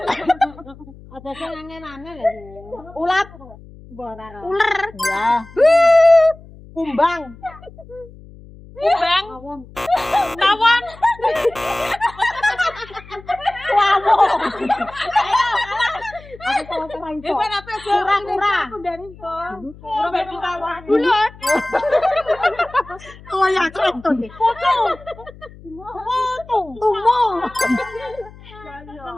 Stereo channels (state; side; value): noise; left; hum, 20 dB below the sound